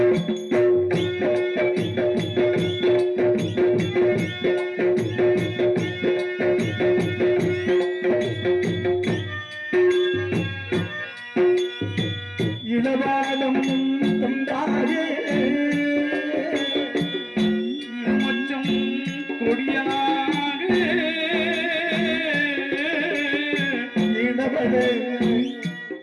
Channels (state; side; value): identical; both; correlation 1.00